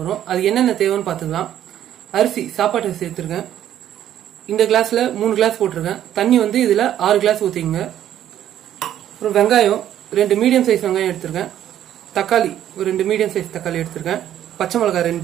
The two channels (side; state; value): left; quieter; 11.3 dB